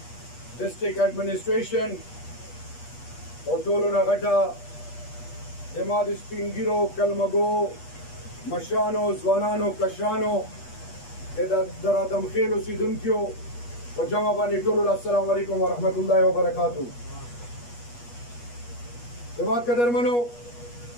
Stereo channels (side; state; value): right; late; 8.3 ms